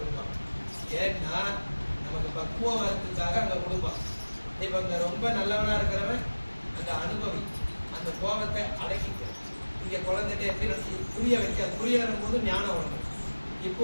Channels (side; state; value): both; inverted; correlation -1.00